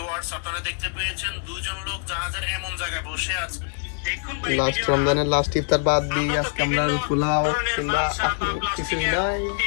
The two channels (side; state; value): right; silent; 62 dB below the other